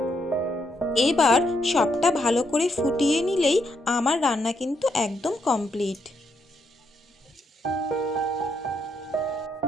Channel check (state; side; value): normal; both; correlation 0.77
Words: এবার সবটা ভালো করে ফুটিয়ে নিলেই আমার রান্না কিন্তু একদম কমপ্লিট।